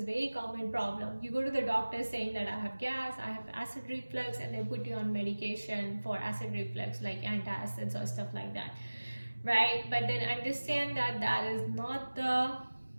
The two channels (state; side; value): inverted; both; correlation -1.00